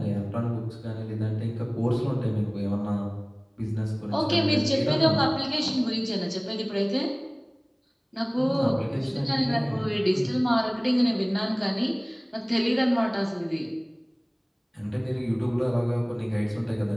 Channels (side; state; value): both; identical; correlation 1.00